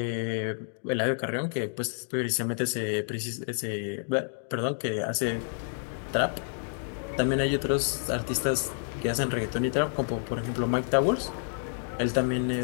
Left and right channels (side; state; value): right; silent; digital silence